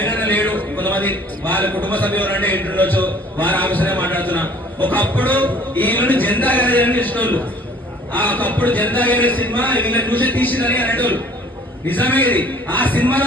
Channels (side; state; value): both; normal; correlation 0.53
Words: లేడు, కొంతమంది వాళ్ళ కుటుంబ సభ్యులు అంటే ఇంటుండొచ్చు, వారి ఆఫీసరే మాట్లాడుతున్నా. ఒకప్పుడు వీళ్ళని జెండా గారి ఇష్టోళ్ళు, ఆ ఒకప్పుడు జనతా గ్యారేజ్ సినిమా వీళ్ళని చూసి తీసిందని అనేటోళ్ళు. నిజమే ఇది. ఆ సినిమాలో